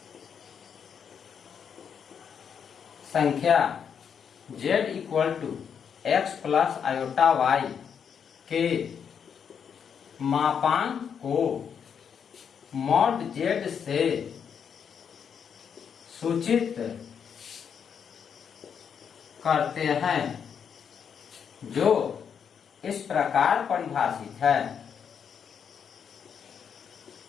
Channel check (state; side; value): quieter; right; 7.4 dB